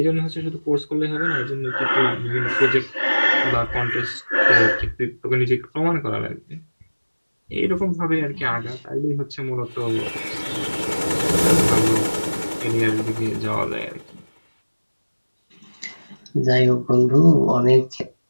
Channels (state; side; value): inverted; both; correlation -1.00